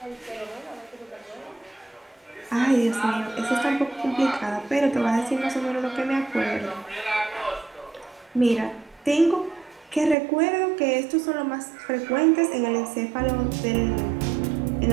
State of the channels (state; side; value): drops out; left; at 10.2 s